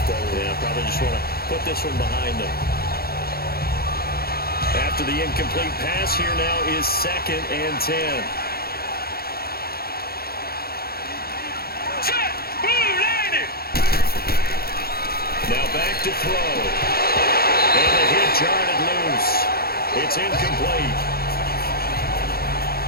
forward. Yeah, probably just want to put this one behind them. After the incomplete pass, here now is 2nd and 10. Now back to throw. And the hit jarred it loose. It's incomplete.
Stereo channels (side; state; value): right; late; 0.44 ms